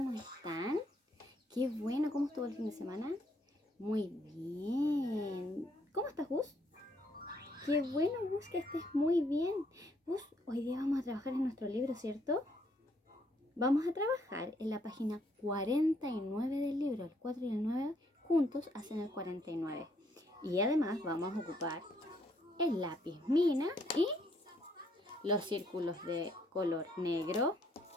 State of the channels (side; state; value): both; normal; correlation 0.70